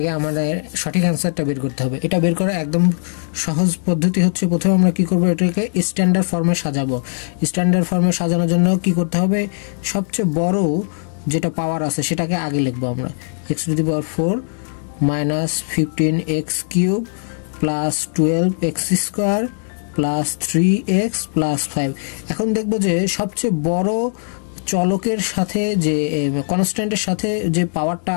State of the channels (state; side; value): silent; right; digital silence